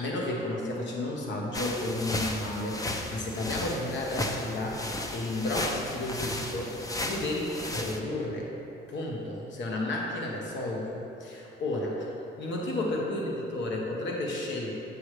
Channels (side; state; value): both; normal; correlation 0.44